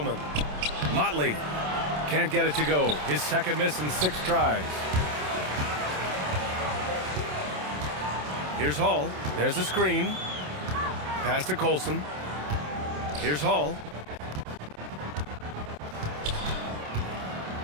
Motley can't get it to go. His second miss in 6 tries. Here's Hall. There's the screen. Pass to Colson. Here's Hall.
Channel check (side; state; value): left; late; 27 ms